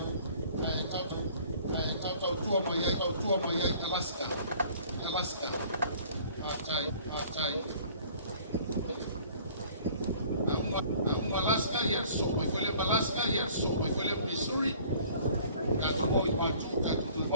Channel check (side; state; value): both; inverted; correlation -0.53